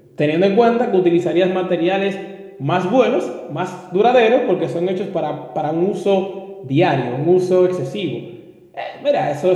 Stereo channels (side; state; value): both; identical; correlation 1.00